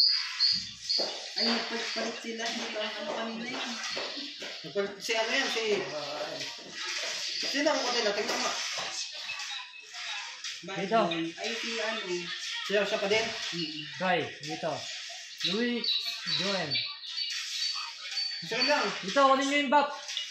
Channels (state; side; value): identical; both; correlation 1.00